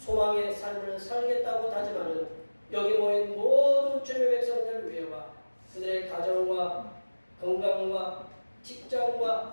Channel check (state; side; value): inverted; both; correlation -1.00